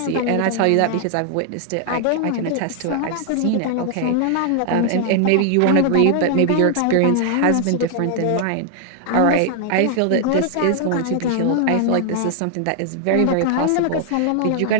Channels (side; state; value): both; different; correlation 0.00